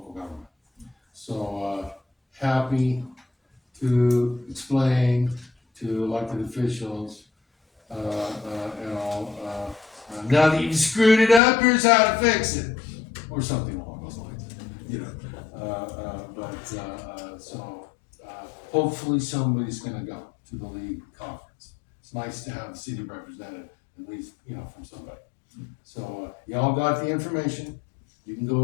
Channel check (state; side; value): drops out; right; at 11.4 s